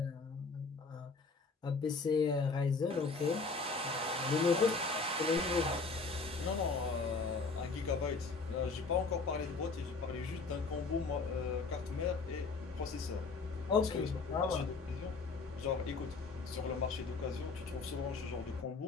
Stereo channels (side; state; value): right; quieter; 4.2 dB